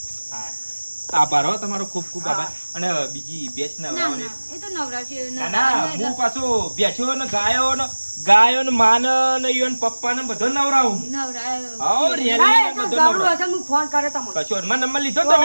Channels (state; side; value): inverted; both; correlation -1.00